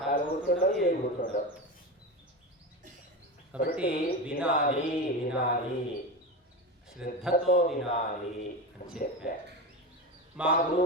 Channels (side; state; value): both; normal; correlation 0.22